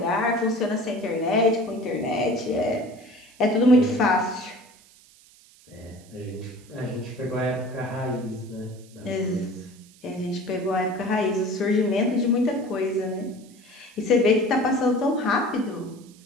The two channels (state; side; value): noise; right; hiss, 26 dB below the sound